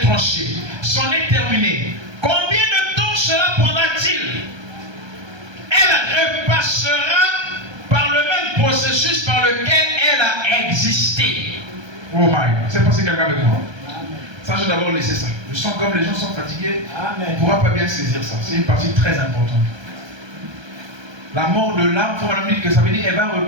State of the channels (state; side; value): late; left; 1.3 ms